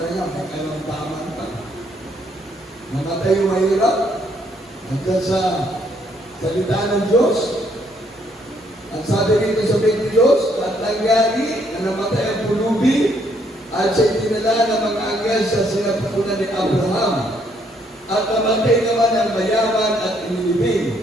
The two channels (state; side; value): normal; both; correlation 0.69